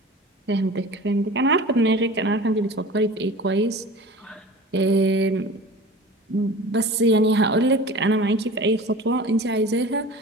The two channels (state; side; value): normal; both; correlation 0.38